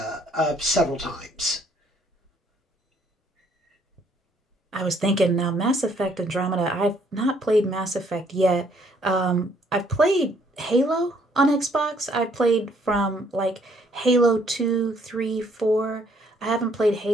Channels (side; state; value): both; normal; correlation 0.66